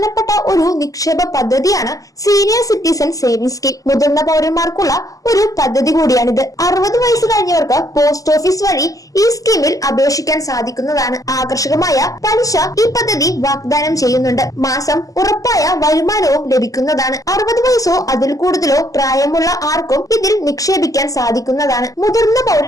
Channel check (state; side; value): late; right; 0.17 ms